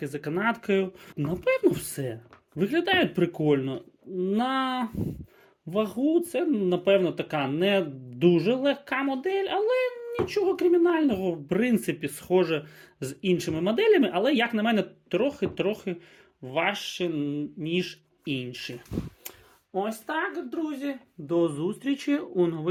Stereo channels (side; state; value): both; identical; correlation 1.00